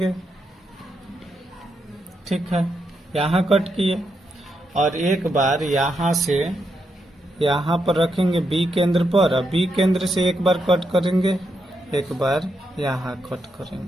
ठीक है, यहाँ कट किए, और एक बार यहाँ से यहाँ पर रखेंगे बी केंद्र पर, और बी केंद्र से एक बार कट करेंगे, एक बार यहाँ कट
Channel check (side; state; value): both; normal; correlation 0.82